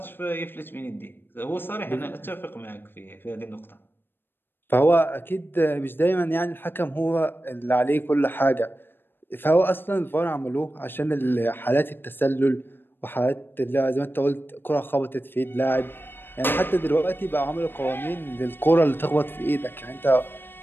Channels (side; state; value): right; late; 0.098 ms